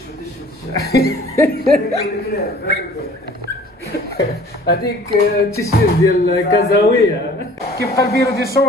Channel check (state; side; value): normal; both; correlation 0.50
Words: هذيك التيشيرت ديال كازاويه. كيبقى البيرو دي